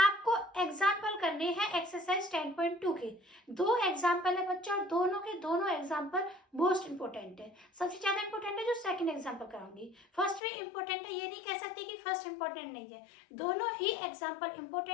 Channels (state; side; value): drops out; right; at 10.4 s